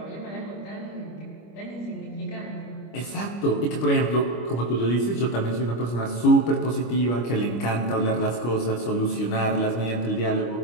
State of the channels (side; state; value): right; late; 25 ms